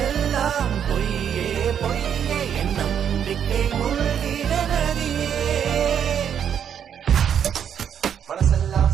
பொய்யே பொய்யே என் நம்பிக்கை மூழ்கிட நதியே மனசெல்லாம்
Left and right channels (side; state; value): left; quieter; 8.5 dB